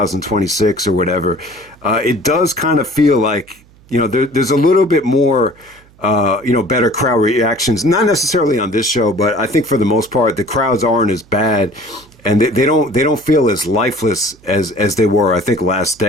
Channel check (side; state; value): right; noise; hum, 28 dB below the sound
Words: or whatever, it does kind of feel like there's a little bit more. Better crowd reactions. Not necessarily on this show, but I think for the most part, the crowds aren't as bad, and they don't feel as lifeless as they were. I think last